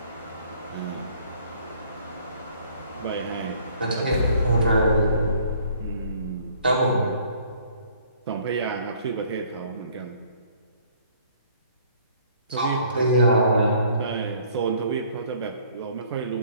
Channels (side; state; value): both; inverted; correlation -0.58